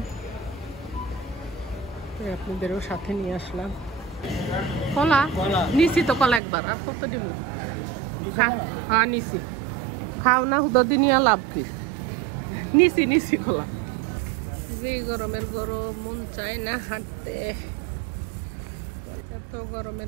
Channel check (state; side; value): drops out; left; at 6.4 s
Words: আপনাদেরও সাথে নিয়ে আসলাম। কলা নিছি তো, কলা একবার আর কত দিব? হ্যাঁ নিছি, খাও না হুদি নিয়ে লাভ কি? নিছি কলা। যে গরমের গরম, মন চায় না হাঁটতে, এত